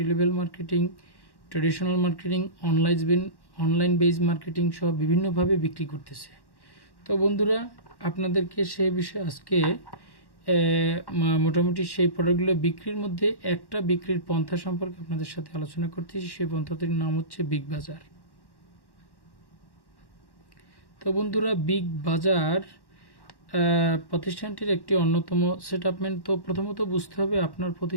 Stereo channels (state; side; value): late; right; 1.1 ms